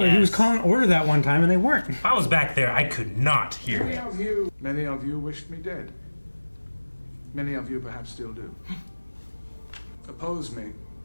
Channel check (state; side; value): inverted; both; correlation -1.00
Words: he was calling order that one time and they weren't. If I was back there, I could not hear it. Many of you wished me dead. Many of you perhaps still do. Oppose me,